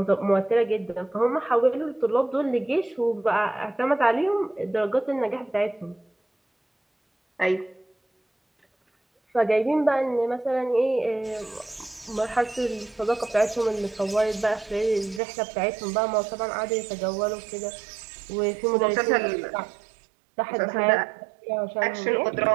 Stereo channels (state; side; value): drops out; left; at 15.2 s